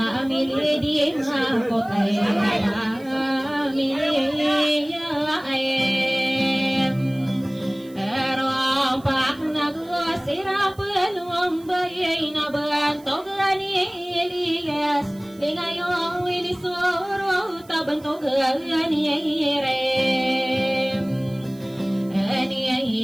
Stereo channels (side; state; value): right; noise; hiss, 26 dB below the sound